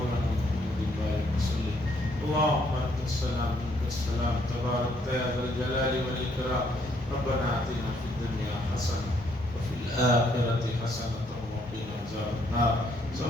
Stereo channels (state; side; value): normal; both; correlation 0.69